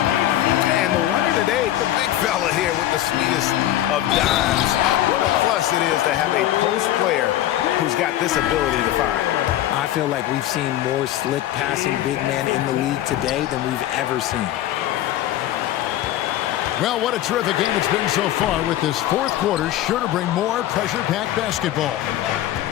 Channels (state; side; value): quieter; right; 13.3 dB